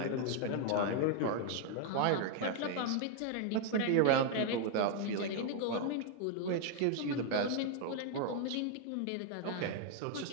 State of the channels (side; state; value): both; different; correlation 0.00